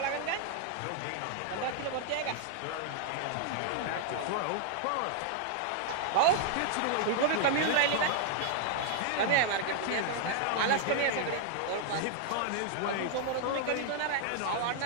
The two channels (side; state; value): both; different; correlation -0.01